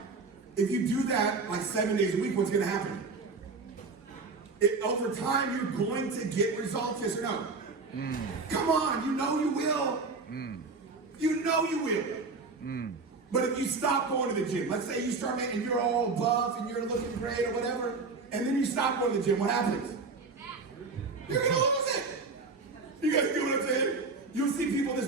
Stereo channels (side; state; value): left; quieter; 4.1 dB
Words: If you do that like 7 days a week, what's going to happen? Over time, you're going to get results, yes or no? Come on, you know you will. You know you will. But if you stop going to the gym, let's say you start making, you're all buff and you're looking great or whatever, and then you stop going to the gym, what happens? You're going to lose it. You guys get what I'm saying? You'll see people in this